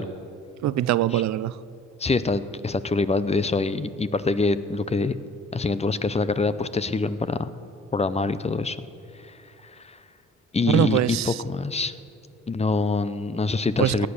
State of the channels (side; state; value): both; normal; correlation 0.51